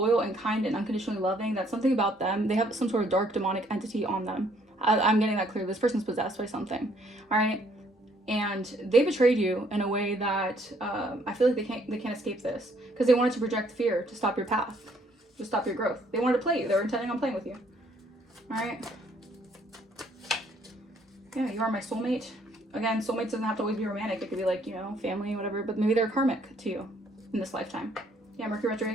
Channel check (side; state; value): both; normal; correlation 0.65